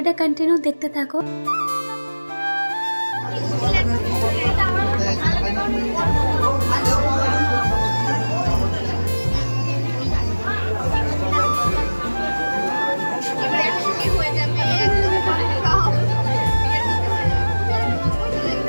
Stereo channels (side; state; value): both; inverted; correlation -1.00